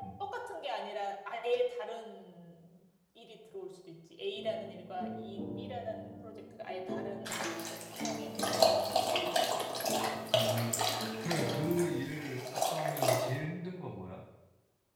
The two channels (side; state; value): both; identical; correlation 1.00